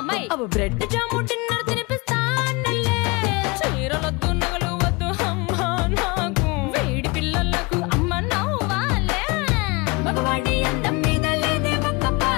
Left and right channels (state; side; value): quieter; right; 26.6 dB